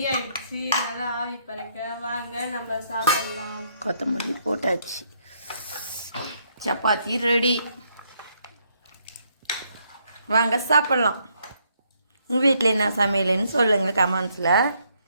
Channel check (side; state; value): both; inverted; correlation -0.73